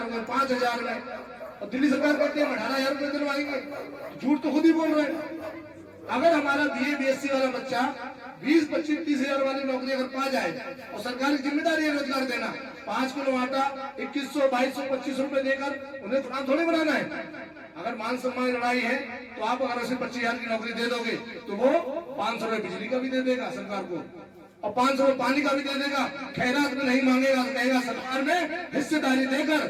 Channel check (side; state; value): both; identical; correlation 1.00